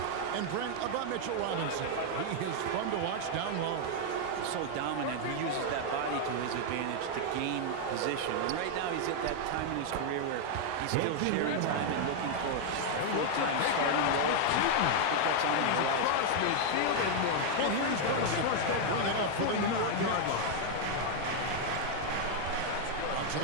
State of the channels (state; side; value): different; both; correlation 0.00